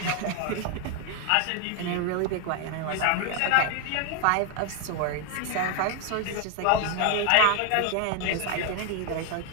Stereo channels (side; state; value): both; different; correlation 0.01